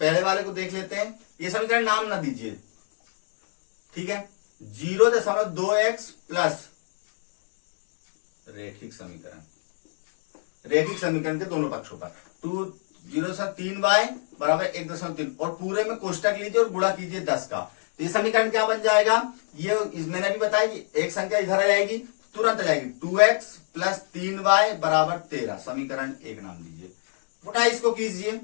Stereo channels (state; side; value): silent; right; digital silence